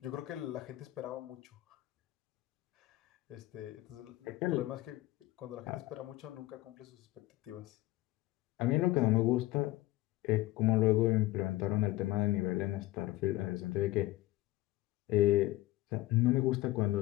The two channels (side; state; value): right; quieter; 17.4 dB